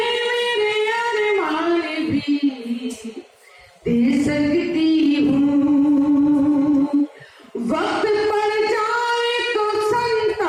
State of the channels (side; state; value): both; identical; correlation 1.00